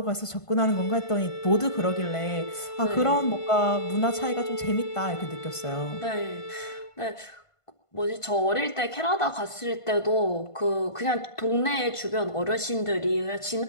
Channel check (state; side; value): late; right; 1.5 ms